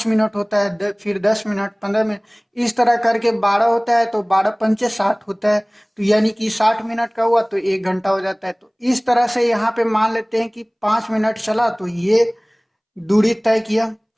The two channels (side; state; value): both; identical; correlation 1.00